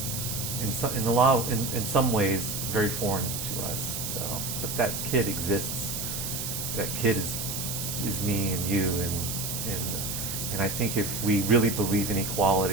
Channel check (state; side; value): noise; right; hiss, 4 dB below the sound